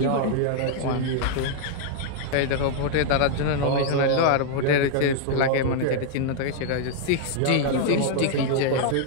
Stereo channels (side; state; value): both; different; correlation -0.01